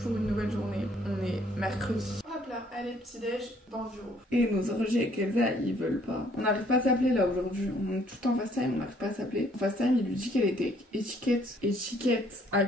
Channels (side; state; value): both; normal; correlation 0.63